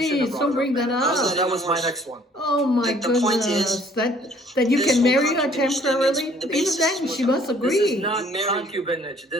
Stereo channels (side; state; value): both; normal; correlation 0.58